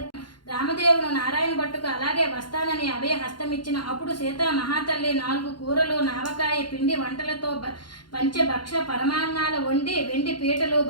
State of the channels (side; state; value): right; late; 0.71 ms